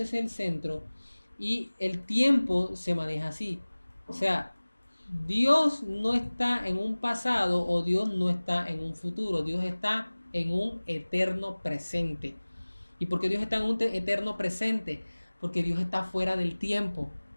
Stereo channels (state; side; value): inverted; both; correlation -1.00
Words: y el tiempo se maneja así. O sea, Dios no está en un pasado o Dios no está en un futuro, Dios está en un eterno presente. ¿Y por qué Dios está en un eterno presente? Porque Dios está fuera del tiempo.